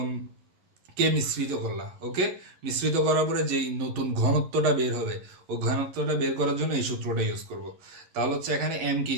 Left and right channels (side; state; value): left; late; 11 ms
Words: মিশ্রিত করলা, ওকে। মিশ্রিত করার পরে যেই নতুন ঘনত্বটা বের হবে, ওই ঘনত্বটা বের করার জন্য এই সূত্রটা ইউজ করব। তাহলে হচ্ছে এখানে এম কি